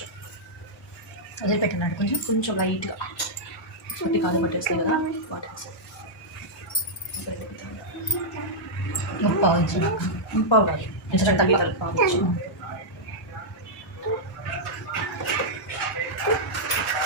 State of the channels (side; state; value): both; normal; correlation -0.07